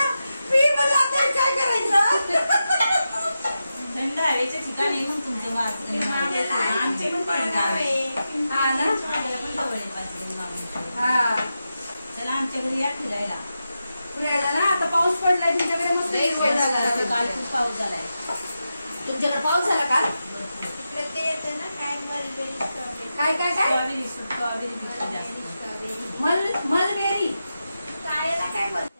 पी म्हणलं आता काय करायचं. थंड हवेच्या ठिकाणी येऊन तुमचं आमचे पण गाव आहे. हा ना. हा, चला आमच्या घरी या फिरायला. फिरायला ना. आता पाऊस पडलाय तुमच्याकडे. मस्त काल खूप पाऊस झालाय. तुमच्याकडे पाऊस झाला का? इकडे ते येते ना, काय मलबेरी स्ट्रॉबेरी. काय काय काय? मलबेरी. कायला काय बोलतात?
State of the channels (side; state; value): both; inverted; correlation -0.90